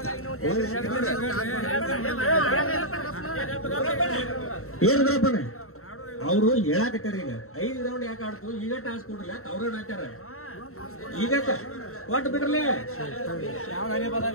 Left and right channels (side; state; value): right; late; 0.63 ms